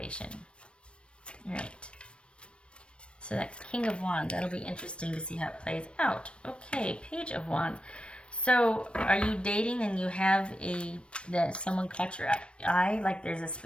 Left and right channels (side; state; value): right; late; 0.058 ms